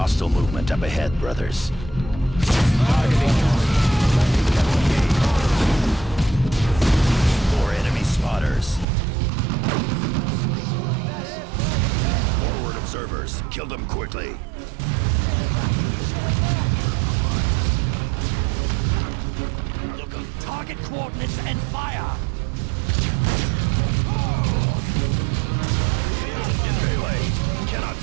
movement up ahead, brothers. More enemy spotters. Forward observers. Kill them quickly. Look up. Target coordinates and fire! In melee. Cannot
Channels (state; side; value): drops out; left; at 8.8 s